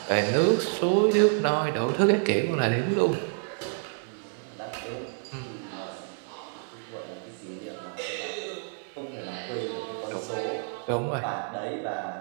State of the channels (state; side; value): silent; left; 59 dB below the other